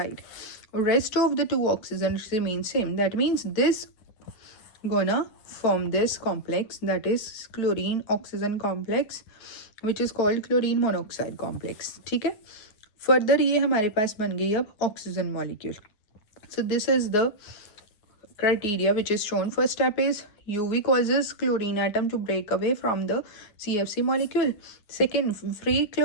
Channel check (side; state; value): right; late; 9.6 ms